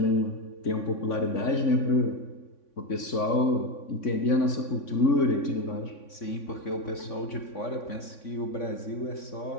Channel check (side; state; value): right; late; 3.6 ms